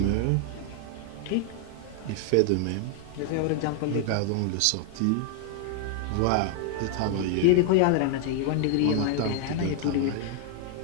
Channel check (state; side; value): different; both; correlation 0.00